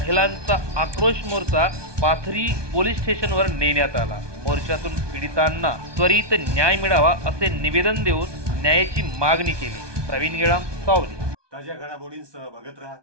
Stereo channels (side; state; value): left; late; 1.2 ms